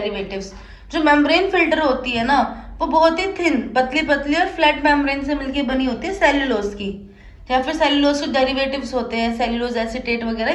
जो मेम्ब्रेन फिल्टर होती है ना वो बहुत ही थिन, पतली पतली और फ्लैट मेम्ब्रेन से मिलकर बनी होती है, सेल्यूलोज की, या फिर सेल्यूलोज के डेरिवेटिव्स होते हैं, सेल्यूलोज एसीटेट वगैरह,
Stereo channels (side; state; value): both; identical; correlation 1.00